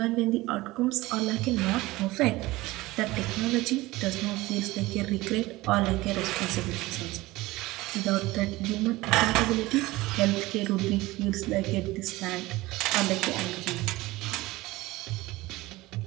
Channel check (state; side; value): quieter; left; 19.4 dB